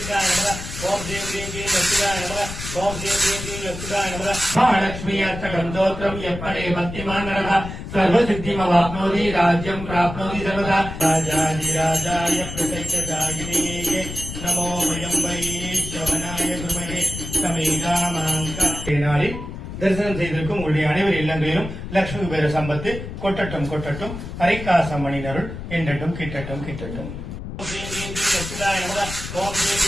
தரிசனம் செய்திருக்கும் உங்களுடைய அனைவர் இல்லங்களிலும் லட்சுமி குபேர சம்பத்து கொட்டட்டும் கொட்டட்டும் ஹரிகாசம் மணினருள் என்றட்டும் கிட்டட்டும் கிட்டட்டும்.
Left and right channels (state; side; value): noise; left; rumble, 9 dB below the sound